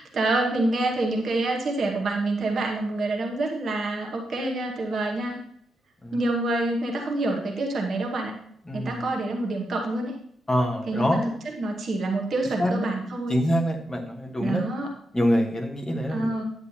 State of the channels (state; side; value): normal; both; correlation 0.85